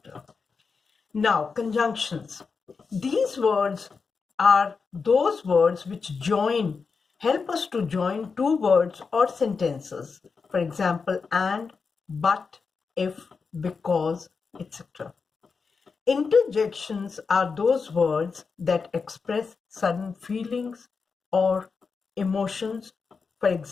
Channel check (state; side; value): quieter; right; 5.1 dB